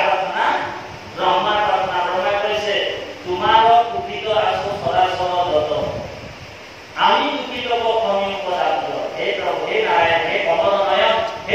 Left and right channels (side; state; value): both; identical; correlation 1.00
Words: ব্ৰহ্মাৰ প্ৰাৰ্থনা ব্ৰহ্মাই কৈছে তোমাৰ সুখিত আছো চৰাচৰ যত আমি দুখিত প্ৰথমি উপদামোদৰ হে প্ৰভু হে নাৰায়ণ হে কমলনয়ন